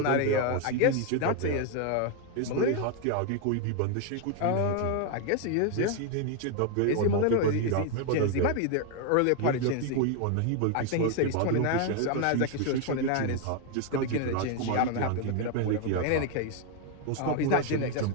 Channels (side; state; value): both; different; correlation 0.01